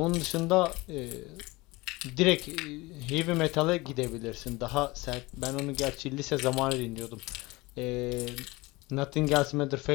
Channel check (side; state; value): right; quieter; 22.4 dB